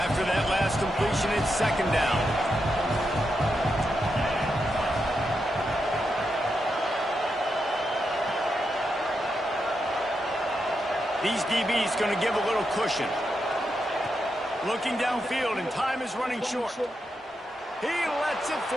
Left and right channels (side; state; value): both; normal; correlation 0.85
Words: that last completion, it's second down. These DBs going to give a little cushion. Looking downfield, and time is running short. He lets it